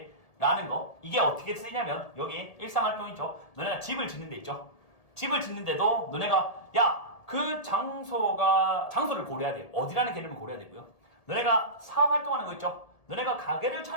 라는 거. 이게 어떻게 쓰이냐면 여기 일상활동 있죠? 너네가 집을 짓는 데 있죠? 집을 짓는데도 너네가 야, 그 장소를 고려해야 돼요. 어디라는 개념을 고려해야 되고요. 너네가 사업 활동하는 거 있죠? 너네가 가게를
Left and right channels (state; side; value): late; right; 1.8 ms